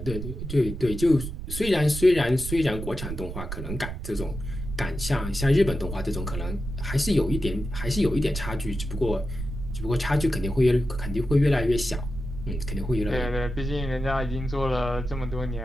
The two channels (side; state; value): right; noise; rumble, 7 dB below the sound